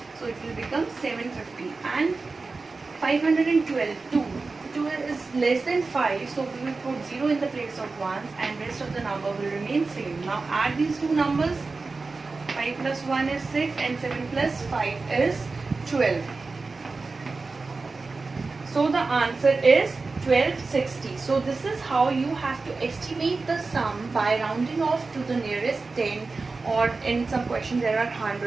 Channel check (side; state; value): left; quieter; 3.9 dB